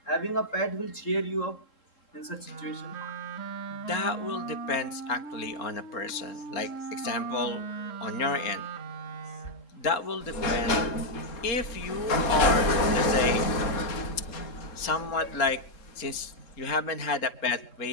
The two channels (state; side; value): late; right; 3.7 ms